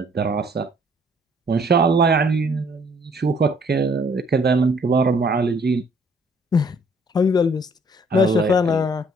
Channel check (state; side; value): normal; both; correlation 0.61